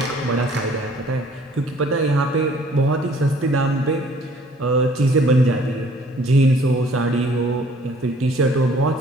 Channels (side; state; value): both; normal; correlation 0.57